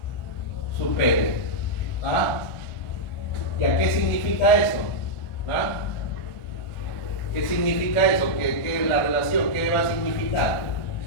Supere. ¿Ah? ¿Y a qué significa eso? ¿Ah? ¿Qué significa eso? ¿Qué la relación? ¿Qué va a significar?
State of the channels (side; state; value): right; late; 1.4 ms